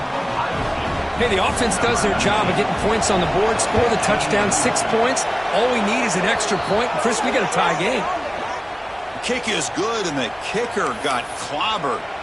Hey, the offense does their job of getting points on the board, score the touchdown, 6 points. All we need is an extra point. Chris, we got a tie game. Kick is good, and the kicker got clobbered.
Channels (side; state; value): both; identical; correlation 1.00